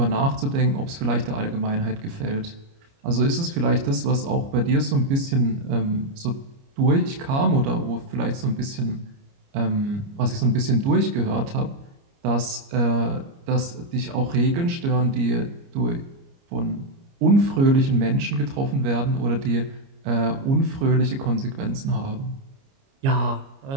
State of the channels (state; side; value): late; left; 29 ms